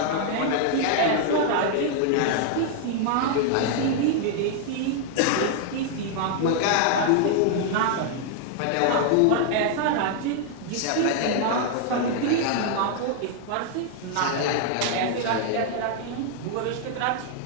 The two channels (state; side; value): different; both; correlation 0.00